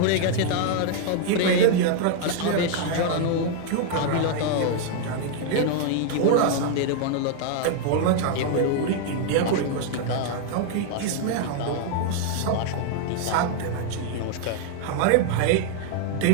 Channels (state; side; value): different; both; correlation 0.00